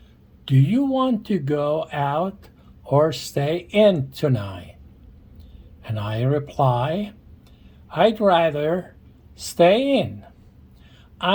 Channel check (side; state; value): both; identical; correlation 1.00